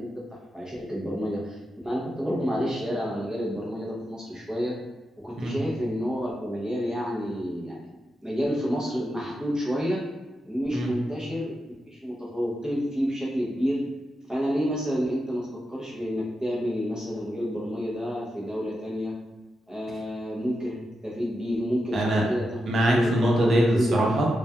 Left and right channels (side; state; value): both; normal; correlation 0.88